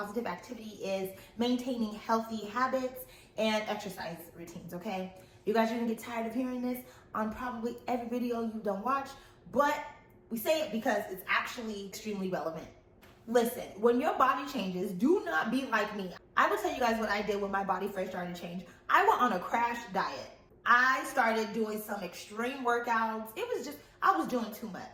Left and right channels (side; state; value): both; identical; correlation 1.00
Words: activity is maintaining healthy habits and exercise routines, okay? You guys are gonna get tired of hearing this on probably every video you don't watch, but we say it because it's actually extremely relevant. Listen, when your body changes, do not be like me. I will tell you guys what I did when my body first started to change. I went on a crash diet. I started doing some extreme workouts. I was doing too